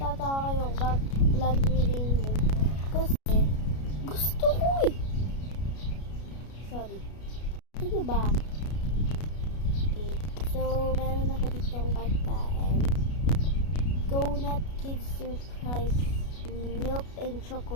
kayo, bakit lagi rin kasi gusto ko eh. Sorry. Ano ba? Okay. So, meron ako ditong pagkain. Donut Kids Surprise milk and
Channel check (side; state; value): right; late; 33 ms